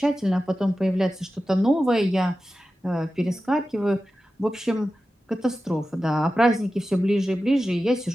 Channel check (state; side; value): normal; both; correlation 0.93